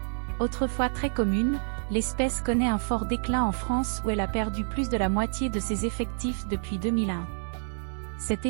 Autrefois très commune, l'espèce connaît un fort déclin en France où elle a perdu plus de la moitié de ses effectifs depuis 2001. Cet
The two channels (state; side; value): silent; left; digital silence